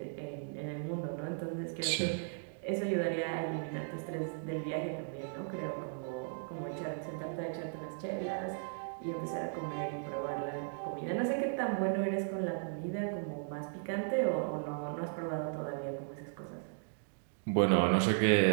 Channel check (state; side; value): silent; left; digital silence